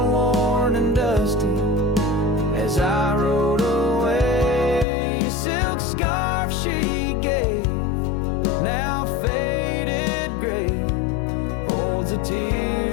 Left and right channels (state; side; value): drops out; right; at 4.9 s